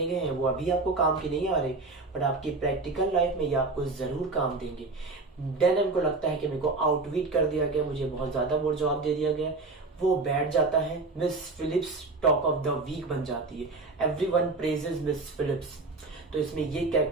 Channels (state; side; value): quieter; left; 3.5 dB